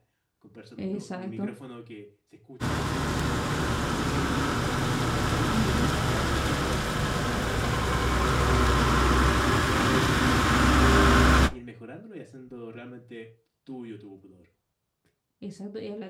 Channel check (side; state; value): both; identical; correlation 1.00